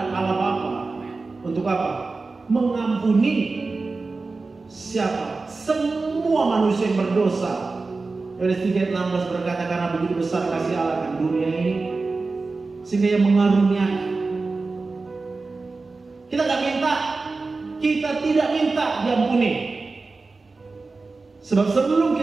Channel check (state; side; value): quieter; left; 3.8 dB